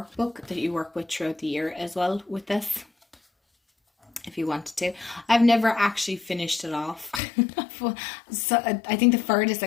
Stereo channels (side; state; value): right; drops out; at 7.2 s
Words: that you work with throughout the year as well with this, if you wanted to. I've never actually finished it off. So I think the furthest